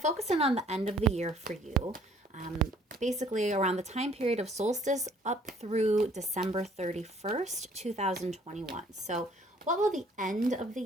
in on the end of the year for you. Basically around the time period of solstice up through December 31st, 2021. So what will the end of the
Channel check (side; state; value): both; normal; correlation 0.60